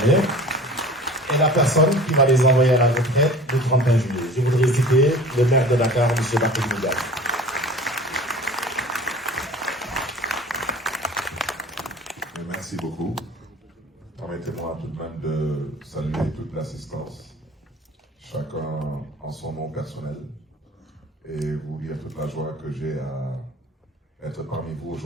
et la personne qui va les envoyer à la retraite le 31 juillet. Je voudrais citer le maire de Dakar, M. Barthélémy Dias. Merci beaucoup. Permettez-moi tout de même de saluer toute l'assistance, chacun en son nom personnel, et vous dire toute la joie que j'ai à être parmi vous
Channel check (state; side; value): normal; both; correlation 0.42